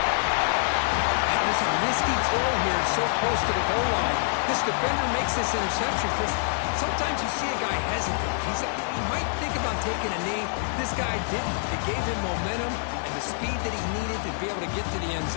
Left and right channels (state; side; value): silent; right; digital silence